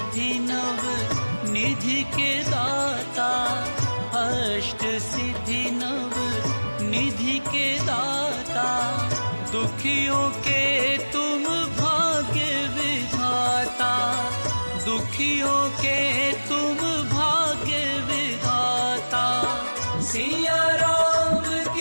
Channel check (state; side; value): inverted; both; correlation -1.00